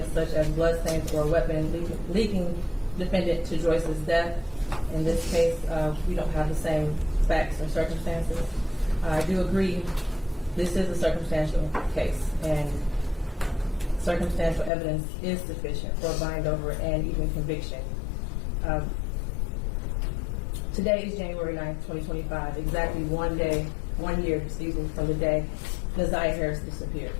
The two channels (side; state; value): right; drops out; at 14.7 s